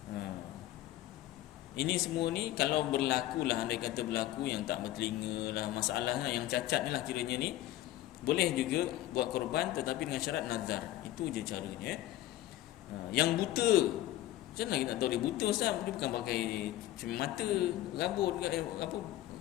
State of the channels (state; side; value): quieter; right; 14.8 dB